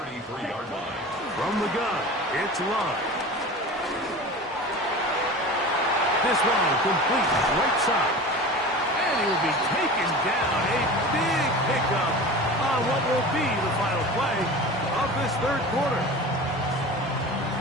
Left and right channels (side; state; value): both; normal; correlation 0.34